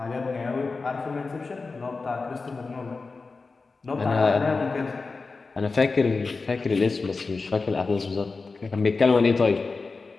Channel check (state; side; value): quieter; right; 4.1 dB